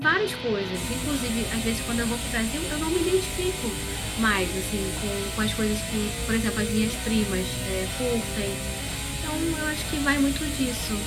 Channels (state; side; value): identical; both; correlation 1.00